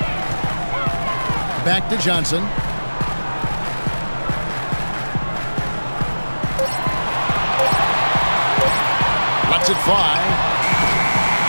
Back to Johnson. Lets it fly.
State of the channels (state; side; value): inverted; both; correlation -1.00